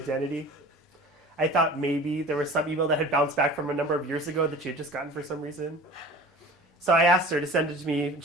I thought maybe there was some email that had bounced back from a number of years ago that she had just gotten for some reason. So I asked her to send it to me.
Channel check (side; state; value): both; normal; correlation 0.41